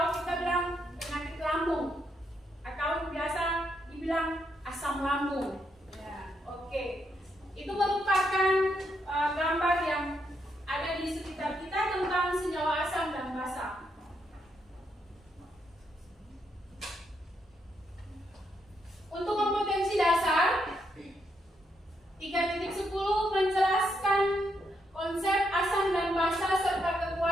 kita bilang penyakit lambung, atau biasa dibilang asam lambung. Oke, itu merupakan gambar yang ada di sekitar kita tentang senyawa asam dan basa. Untuk kompetensi dasar 3.10 menjelaskan konsep asam dan basa serta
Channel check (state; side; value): normal; both; correlation 0.78